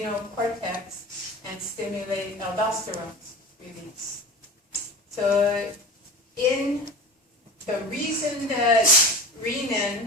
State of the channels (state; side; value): normal; both; correlation 0.33